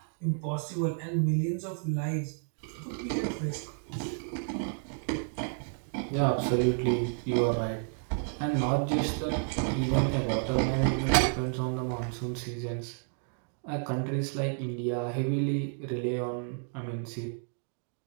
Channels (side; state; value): left; silent; 57 dB below the other